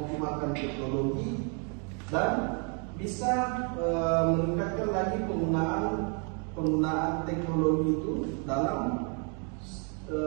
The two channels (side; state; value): left; quieter; 38.2 dB